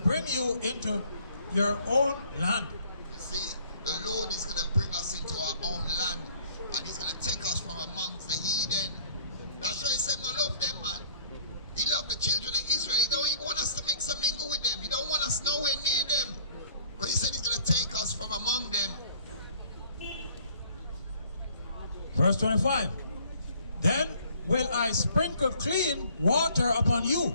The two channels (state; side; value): inverted; both; correlation -0.57